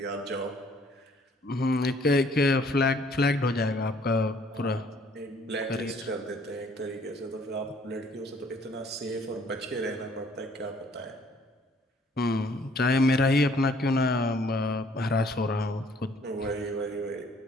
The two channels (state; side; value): normal; both; correlation 0.60